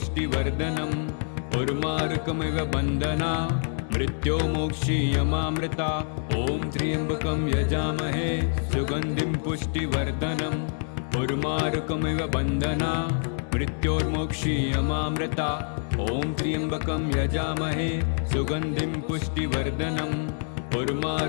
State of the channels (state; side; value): silent; right; digital silence